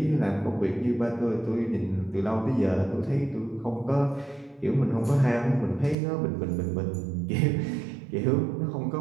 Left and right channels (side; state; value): left; drops out; at 6.0 s